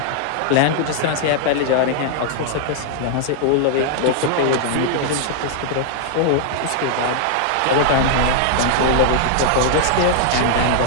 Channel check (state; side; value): different; both; correlation -0.01